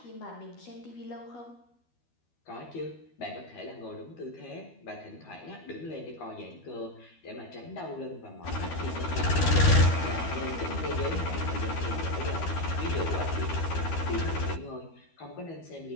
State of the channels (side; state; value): right; late; 12 ms